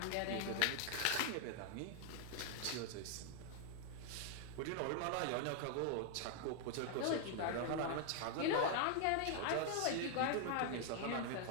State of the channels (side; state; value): both; different; correlation 0.00